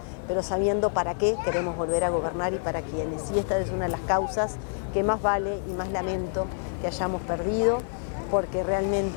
pero sabiendo para qué queremos volver a gobernar y para quiénes. Y esta es una de las causas que más vale y más lamento que hayamos perdido, porque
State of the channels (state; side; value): silent; right; 60 dB below the other